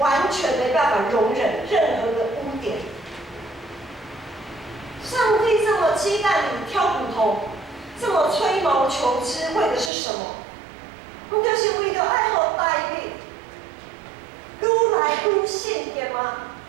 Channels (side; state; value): left; drops out; at 9.9 s